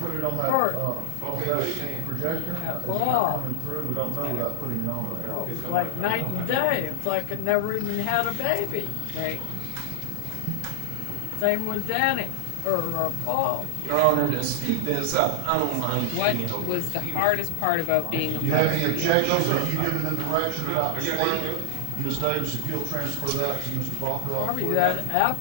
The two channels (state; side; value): different; both; correlation 0.00